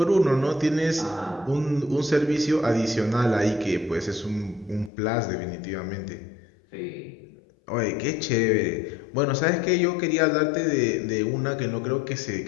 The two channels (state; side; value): drops out; right; at 4.9 s